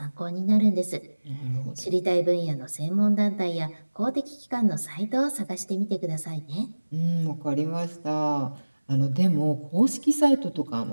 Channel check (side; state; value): both; inverted; correlation -1.00